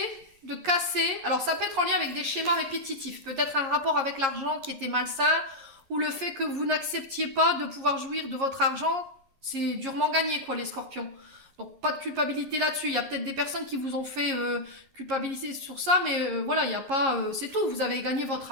de casser. Alors, ça peut être en lien avec des schémas répétitifs. Peut-être un rapport avec l'argent qui était malsain, ou le fait que vous n'acceptiez pas de pouvoir jouir de votre argent. C'est durement gagné, quoi, les scorpions. Donc, pas de culpabilité là-dessus. Il y a peut-être des personnes qui vous ont fait culpabiliser sur ça, mais voilà, il n'y a pas... c'est tout. Vous avez gagné votre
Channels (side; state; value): left; late; 11 ms